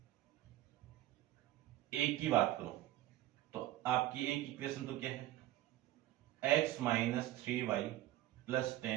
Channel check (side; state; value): left; quieter; 15.2 dB